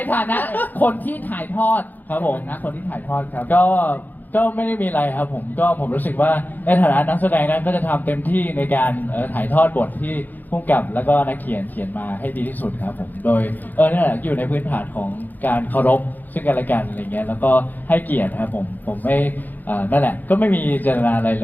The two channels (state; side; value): late; right; 0.085 ms